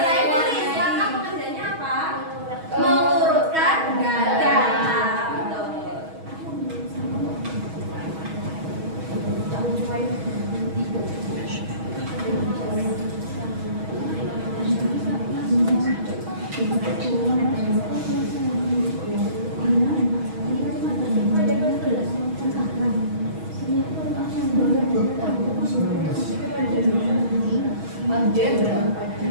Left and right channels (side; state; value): left; late; 6.3 ms